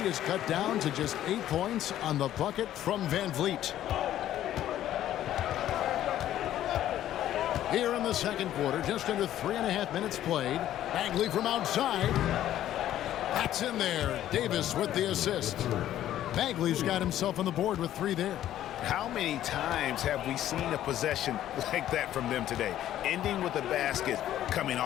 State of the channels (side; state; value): right; quieter; 12.3 dB